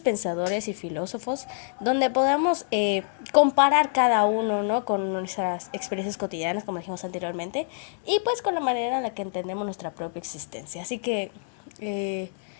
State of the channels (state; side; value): silent; right; digital silence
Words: pensadores y filósofos, donde podamos comparar cada uno, ¿no? Con nuestras experiencias cotidianas, como dijimos anteriormente, y pues con la manera en la que entendemos nuestra propia existencia. Así que,